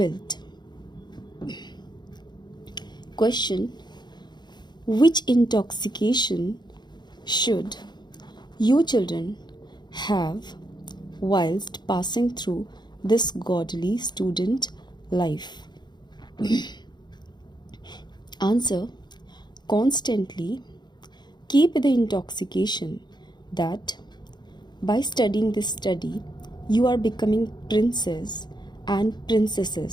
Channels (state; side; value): late; right; 0.21 ms